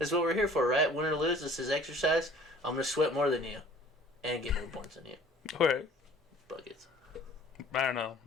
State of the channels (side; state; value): both; normal; correlation 0.51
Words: what we're here for, right? Win or lose, this is exercise. I'm going to sweat more than you and get more points than you. Alright. Buckets. I don't know.